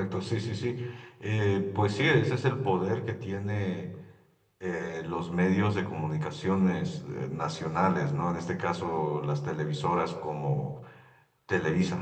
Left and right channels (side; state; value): both; identical; correlation 1.00